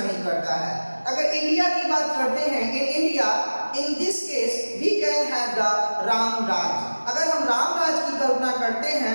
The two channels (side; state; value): both; inverted; correlation -1.00